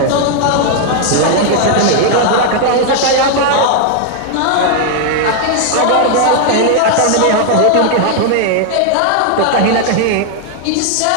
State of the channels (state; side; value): different; both; correlation 0.00